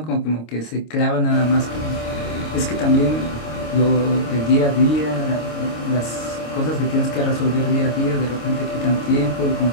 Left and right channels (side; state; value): right; late; 26 ms